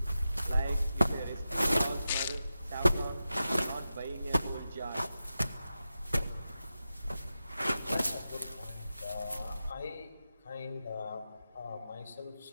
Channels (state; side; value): inverted; both; correlation -0.91